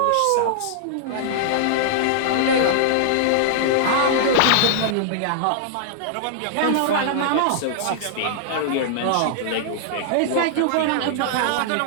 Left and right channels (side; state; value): both; different; correlation -0.01